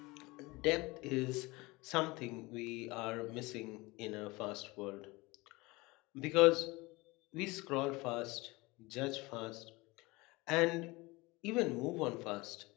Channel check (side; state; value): right; quieter; 23.1 dB